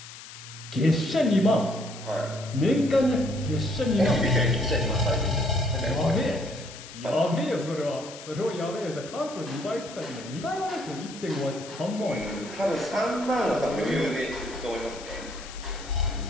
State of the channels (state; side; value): noise; left; hiss, 15 dB below the sound